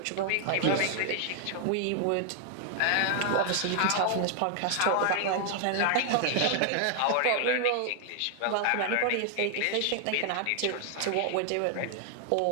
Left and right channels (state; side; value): different; both; correlation 0.00